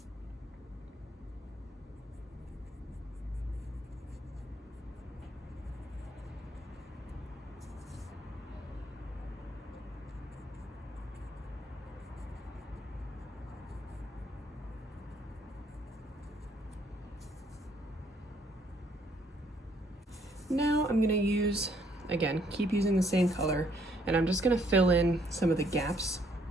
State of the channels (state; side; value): normal; both; correlation 0.67